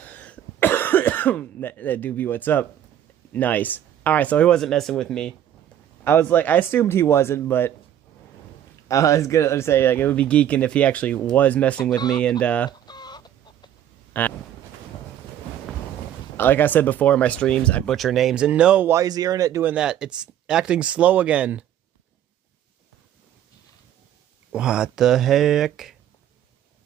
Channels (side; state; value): left; quieter; 10.8 dB